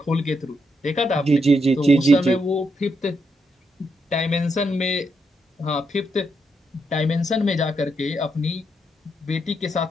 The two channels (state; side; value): normal; both; correlation 0.80